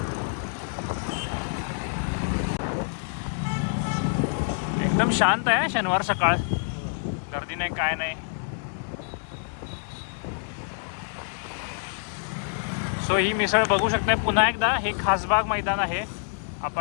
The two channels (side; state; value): right; silent; digital silence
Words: एकदम शांत आहे शनिवार सकाळ. गर्दी नाही, काय नाही. सो ही मिसळ बघू शकताय पुन्हा एकदा. हे खासबाग मैदान आहे.